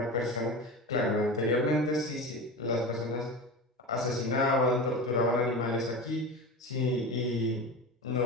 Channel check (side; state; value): both; normal; correlation 0.28